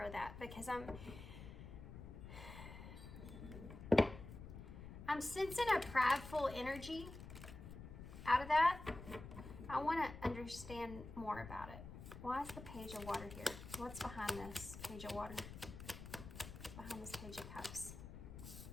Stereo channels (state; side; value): noise; left; rumble, 11 dB below the sound